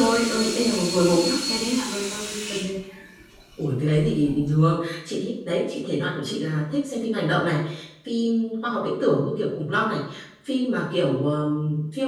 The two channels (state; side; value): identical; both; correlation 1.00